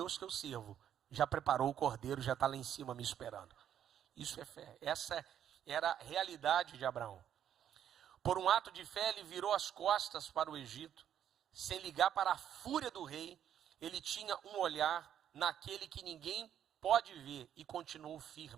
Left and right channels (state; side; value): quieter; left; 9.8 dB